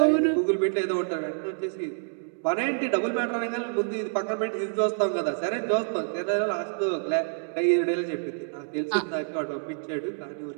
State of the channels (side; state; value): left; silent; digital silence